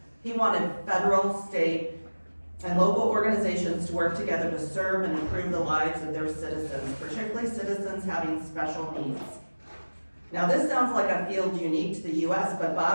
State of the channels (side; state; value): both; inverted; correlation -1.00